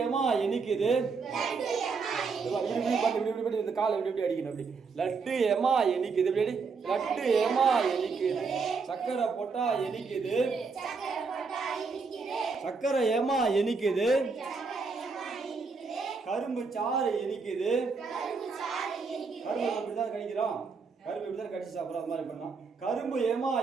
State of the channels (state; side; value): quieter; left; 4.8 dB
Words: ஏமா இனிக்குது. இந்த காலை இப்படி அடிக்கணும். அப்படி லட்டு ஏமா இனிக்குது. இப்படி லட்டு ஏமா இனிக்குது. சக்கரை போட்டா இனிக்குது. சக்கரை ஏமா இனிக்குது. கரும்பு சாறு இனிக்குது. கரும்பு இப்படிதான் கடிக்கிறோம். கரும்பு இப்படிதான் கடிச்சு சாப்பிட்றோம். அது மாதிரி பண்ணலாம். கரும்பு ஏமா